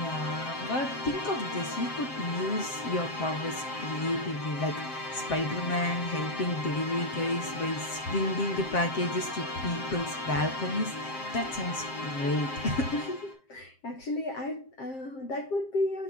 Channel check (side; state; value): right; late; 7.6 ms